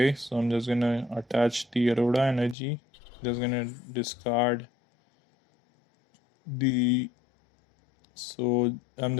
So I'm just gonna attach the Aurora energy. Just gonna discard the. So I'm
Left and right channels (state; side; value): drops out; right; at 2.6 s